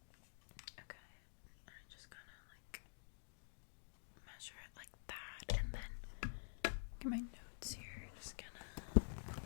I'm just gonna measure it like that, and then get my notes here. Just gonna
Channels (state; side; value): silent; right; digital silence